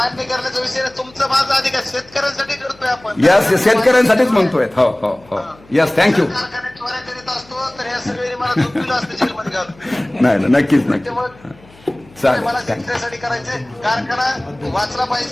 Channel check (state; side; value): noise; left; hum, 26 dB below the sound